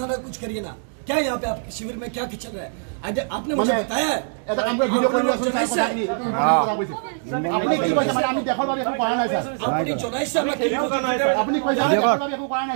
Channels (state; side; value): silent; left; digital silence